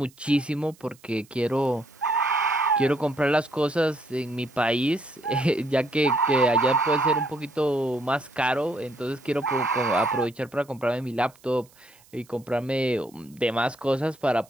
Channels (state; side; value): noise; right; hiss, 28 dB below the sound